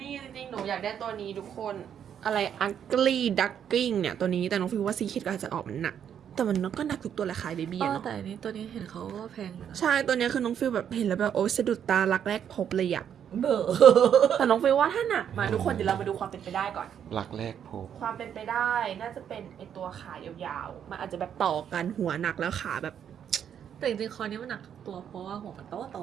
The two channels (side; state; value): left; quieter; 8.8 dB